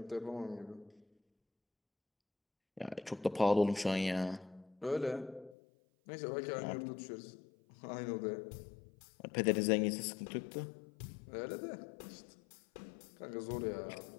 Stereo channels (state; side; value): drops out; right; at 5.6 s